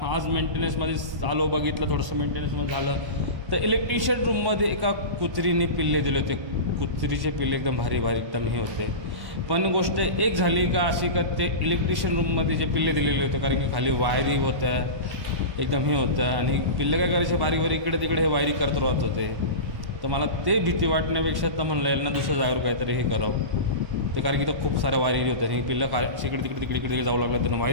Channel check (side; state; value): left; late; 1.1 ms